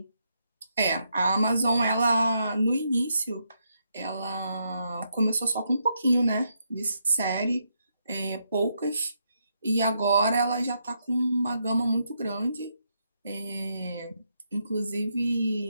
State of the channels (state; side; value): inverted; both; correlation -0.79